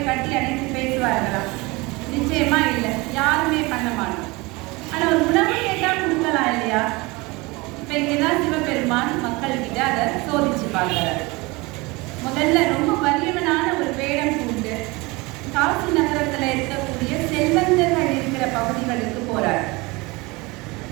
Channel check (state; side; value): quieter; left; 24.2 dB